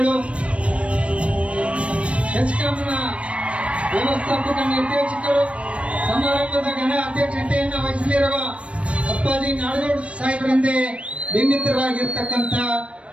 ಹೆಚ್ಕಾಮ್ನ ವ್ಯವಸ್ಥಾಪಕ ನಿರ್ದೇಶಕರು, ಸಮಾರಂಭದ ಘನ ಅಧ್ಯಕ್ಷತೆಯನ್ನು ವಹಿಸಲಿರುವ ಅಪ್ಪಾಜಿ ನಾಡಗೌಡ ಸಾಹೇಬರಿಂದ ಬಿಂಬಿತರಾಗಿರ್ತಕ್ಕಂಥ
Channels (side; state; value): left; late; 0.061 ms